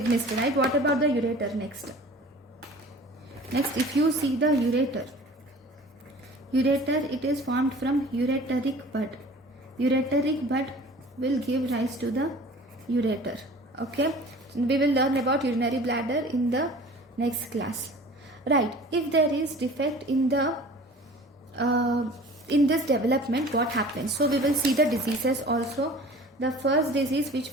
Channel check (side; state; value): both; normal; correlation 0.44